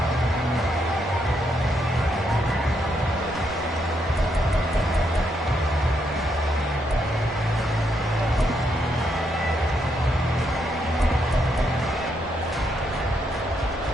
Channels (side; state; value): both; normal; correlation 0.78